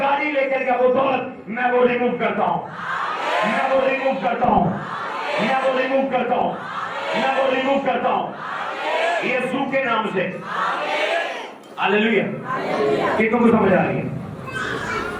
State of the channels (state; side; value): identical; both; correlation 1.00